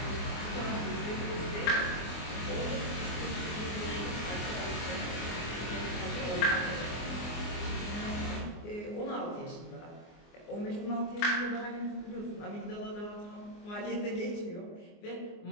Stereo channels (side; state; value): right; late; 24 ms